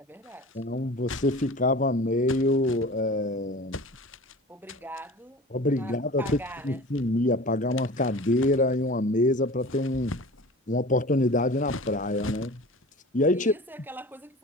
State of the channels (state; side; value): normal; both; correlation 0.38